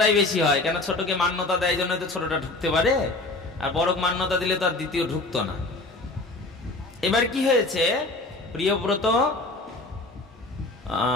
বেশি হয় কেন? ছোটকে মান্যতা দেয় জন্য তো ছোটটা ঢুকতে পারে, আর বড়কে মান্যতা দিলে তো আর দ্বিতীয় ঢুকতো না। এবার কি হয়েছে, প্রিয়ব্রত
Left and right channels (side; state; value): right; quieter; 3.0 dB